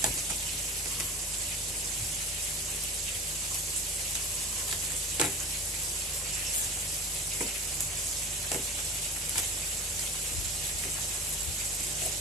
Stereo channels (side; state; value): both; normal; correlation 0.33